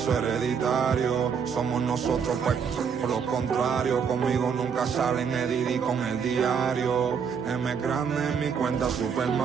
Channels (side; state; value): left; quieter; 6.6 dB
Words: hereditario. Somos nosotros, pues, por lo contrario. Conmigo nunca salen Edidi con el diario. M grande en mi cuenta Super